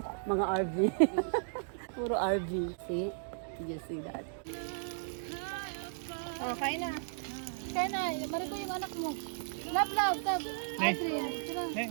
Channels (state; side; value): silent; left; digital silence